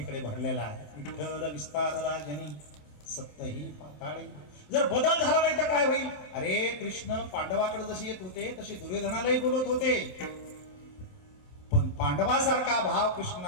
भरलेला आहे. विठ्ठल विस्तारला जनी सत्तही पाताळी. जर बदल झाला नाही तर काय होईल? अरे कृष्ण पांडवाकडे जसे येत होते तसे दुर्योधनालाही बोलत होते, पण पांडवासारखा भाव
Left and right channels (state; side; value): late; right; 27 ms